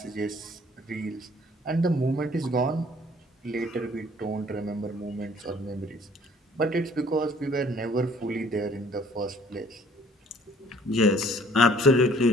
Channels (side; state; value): both; normal; correlation 0.57